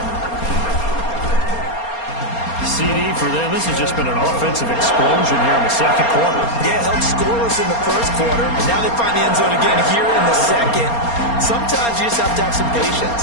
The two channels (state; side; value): late; right; 4.3 ms